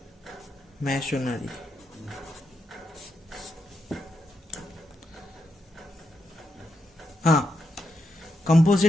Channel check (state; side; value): normal; both; correlation 0.83